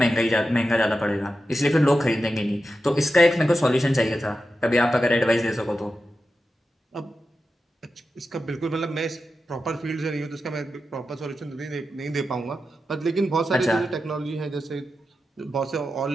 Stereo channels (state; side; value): normal; both; correlation 0.90